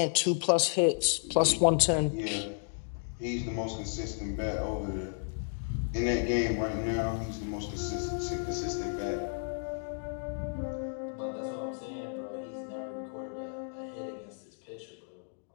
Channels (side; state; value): right; silent; digital silence